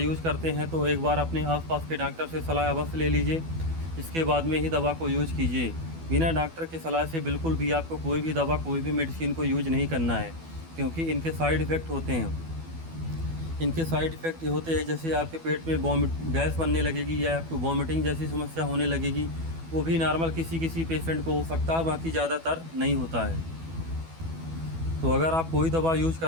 करते हैं तो एक बार अपने आसपास के डॉक्टर से सलाह अवश्य ले लीजिए, इसके बाद में ही दवा को यूज़ कीजिए। बिना डॉक्टर की सलाह से बिल्कुल भी आपको कोई भी दवा, कोई भी मेडिसिन को यूज नहीं करना है, क्योंकि इनके साइड इफ़ेक्ट होते हैं। इनके साइड इफ़ेक्ट ये होते हैं, जैसे आपके पेट में गैस बनने लगेगी या आपको वॉमिटिंग जैसी समस्या होने लगेगी। वो भी नॉर्मल किसी किसी पेशेंट को हो सकता है, बाकी ज़्यादातर नहीं होता है। तो अगर आप कोई दवा यूज़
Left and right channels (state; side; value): late; left; 12 ms